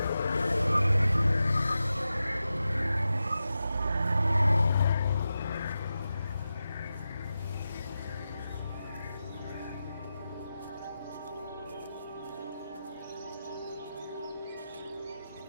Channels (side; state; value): both; inverted; correlation -0.91